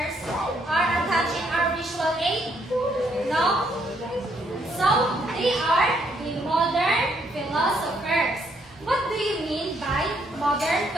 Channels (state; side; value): normal; both; correlation 0.71